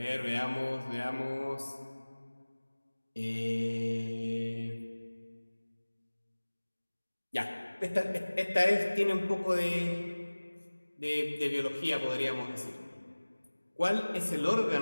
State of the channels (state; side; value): inverted; both; correlation -1.00